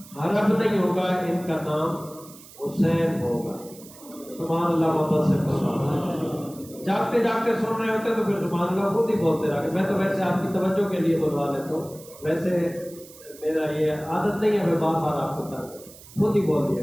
حرب نہیں ہوگا، ان کا نام حسین ہوگا۔ سبحان اللہ، محبت سے فرمایا۔ جاگتے جاگتے سن رہے ہوتے تو پھر سبحان اللہ خود ہی بولتے رہے۔ میں تو ویسے آپ کی توجہ کے لیے بلوا لیتا ہوں، ویسے میرا یہ عادت نہیں ہے میں بار بار آپ کو خود ہی بول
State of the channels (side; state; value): right; noise; hiss, 20 dB below the sound